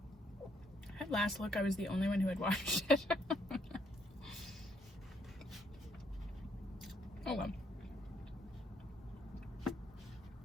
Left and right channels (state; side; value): normal; both; correlation 0.71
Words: At last look, I was the only one who had watched it. Oh well.